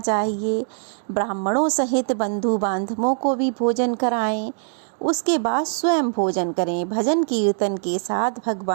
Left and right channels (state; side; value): silent; left; 64 dB below the other